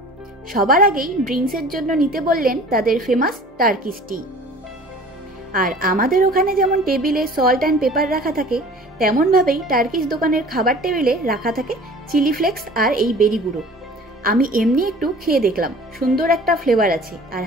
সবার আগেই ড্রিঙ্কসের জন্য নিতে বললেন তাদের ফেমাস টার্কিশ টি। আর আমাদের ওখানে যেমন টেবিলে সল্ট অ্যান্ড পেপার রাখা থাকে, তেমনভাবেই টার্কিশ দোকানের খাবার টেবিলে রাখা থাকে চিলি ফ্লেক্স আর এই বেরি গুঁড়ো। আমি এমনি একটু খেয়ে দেখলাম, সুন্দর একটা ফ্লেভার আছে আর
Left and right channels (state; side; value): normal; both; correlation 0.45